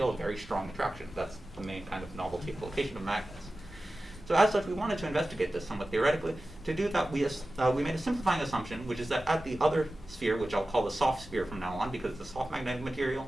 a very strong attraction. That's the main kind of novelty application of magnets. So as such, we wanted to investigate this somewhat theoretically. To do that, we made a simplifying assumption, which is that at the other sphere, which I'll call the soft sphere from now on because it's a soft magnetic material,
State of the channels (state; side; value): normal; both; correlation 0.95